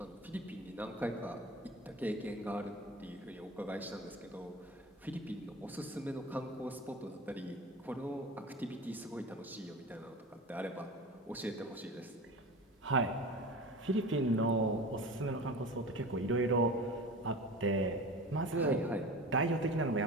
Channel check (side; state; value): both; normal; correlation 0.33